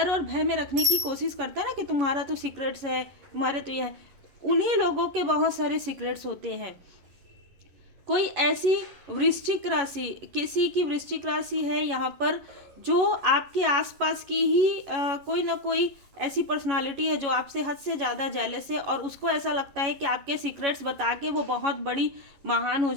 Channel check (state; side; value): late; left; 11 ms